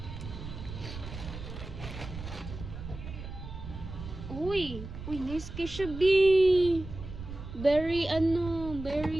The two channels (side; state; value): right; noise; rumble, 10 dB below the sound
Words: Uy, nice kay siya, B. Very